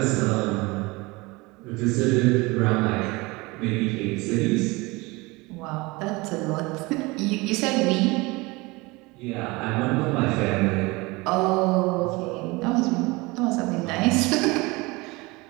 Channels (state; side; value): quieter; left; 23.8 dB